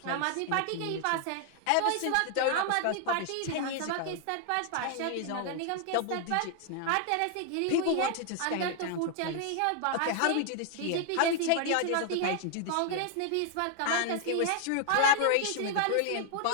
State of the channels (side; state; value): both; different; correlation 0.00